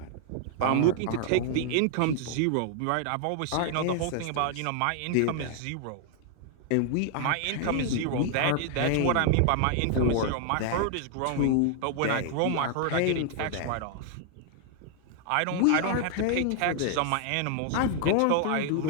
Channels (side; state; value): both; different; correlation 0.00